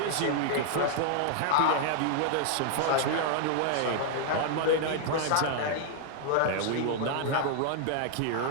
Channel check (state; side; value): different; both; correlation 0.00